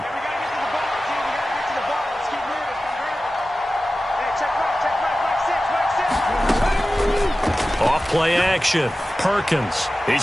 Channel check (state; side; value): normal; both; correlation 0.95